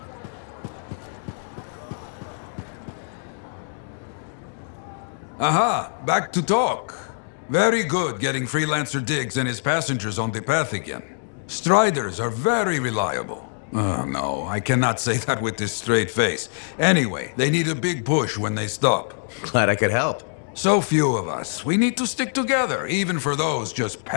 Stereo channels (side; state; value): right; silent; digital silence